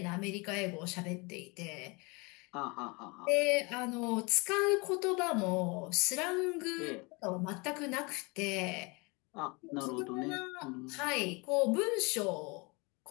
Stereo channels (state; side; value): quieter; right; 28.3 dB